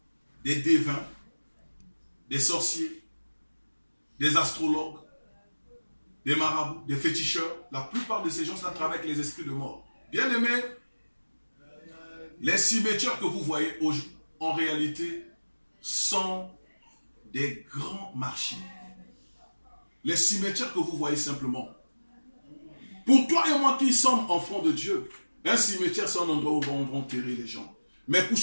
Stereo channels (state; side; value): inverted; both; correlation -1.00